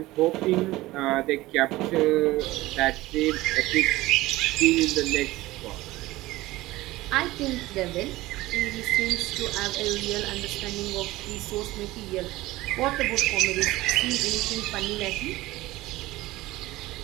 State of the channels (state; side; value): quieter; left; 18.2 dB